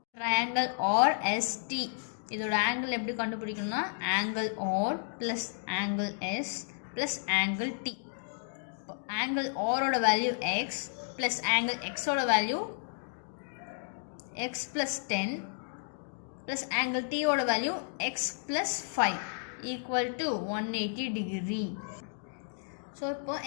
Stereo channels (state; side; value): silent; right; digital silence